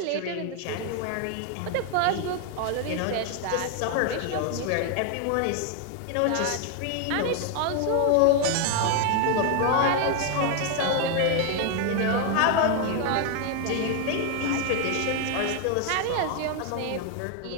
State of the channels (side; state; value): both; different; correlation 0.01